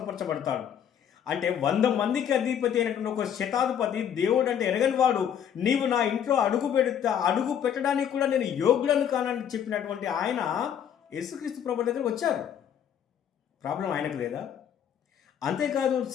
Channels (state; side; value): quieter; right; 8.9 dB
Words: అంటే 100 మందికి అధిపతి అయినటువంటి ఒక శతాధిపతి దేవుడు అంటే ఎరగని వాడు, నీవు నా ఇంట్లో అడుగు పెట్టడానికి కూడా నేను యోగ్యుడను కానని చెప్పినటువంటి ఆయన యేసుక్రీస్తు ప్రభు దగ్గర వచ్చారు. ప్రాబ్లం ఆయనకు లేదా? అంతేకాదు,